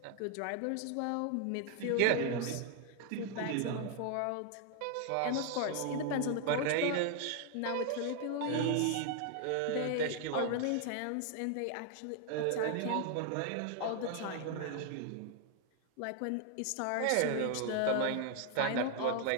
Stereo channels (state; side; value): different; both; correlation 0.00